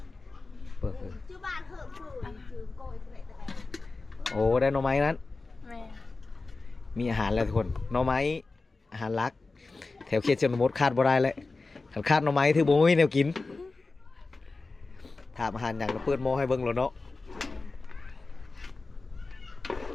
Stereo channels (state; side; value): quieter; right; 3.7 dB